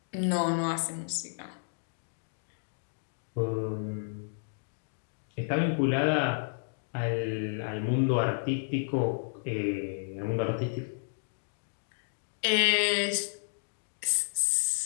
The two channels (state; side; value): silent; right; digital silence